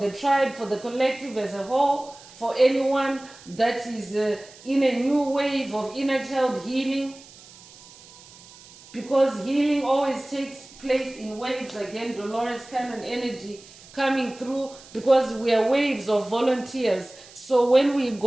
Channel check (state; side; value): noise; right; hiss, 21 dB below the sound